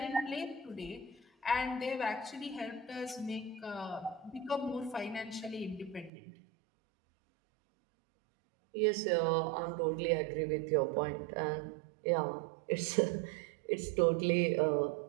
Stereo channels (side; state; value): left; drops out; at 6.1 s